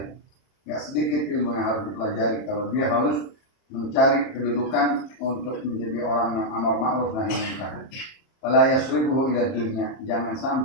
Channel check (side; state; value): right; late; 30 ms